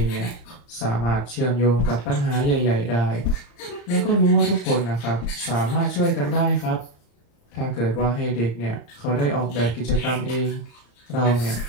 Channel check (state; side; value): late; right; 35 ms